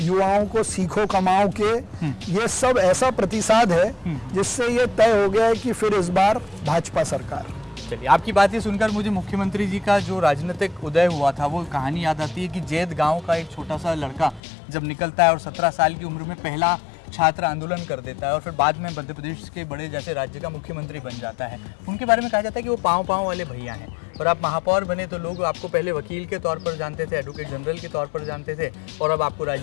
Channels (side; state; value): right; drops out; at 14.4 s